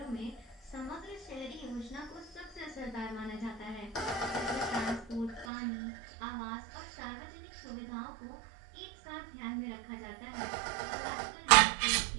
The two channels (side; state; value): left; drops out; at 5.5 s